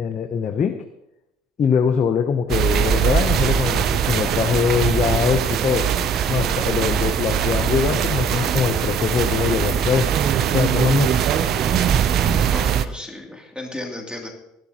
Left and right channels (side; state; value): both; normal; correlation 0.57